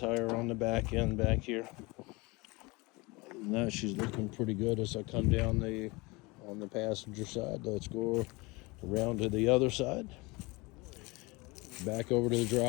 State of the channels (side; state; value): right; quieter; 24.8 dB